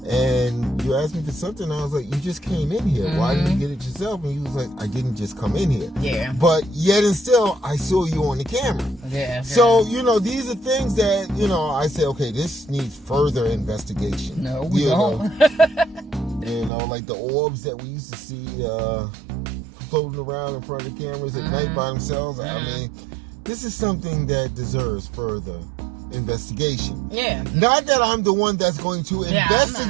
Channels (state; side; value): drops out; left; at 16.7 s